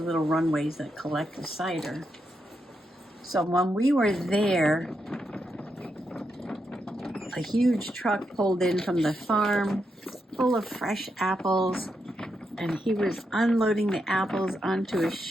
runways that collect the cider. So when we were there, a huge truck pulled in from the farm full of fresh apples, and he was unloading the apples onto a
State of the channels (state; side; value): normal; both; correlation 0.84